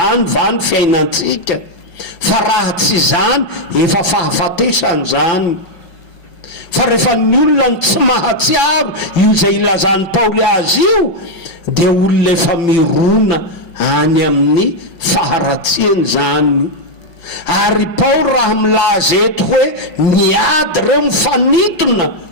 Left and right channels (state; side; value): late; right; 5.4 ms